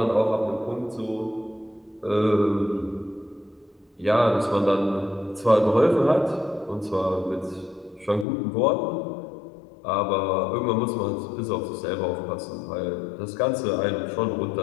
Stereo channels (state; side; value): drops out; right; at 8.2 s